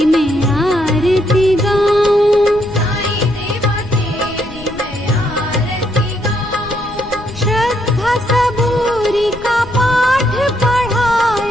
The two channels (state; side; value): noise; left; rumble, 16 dB below the sound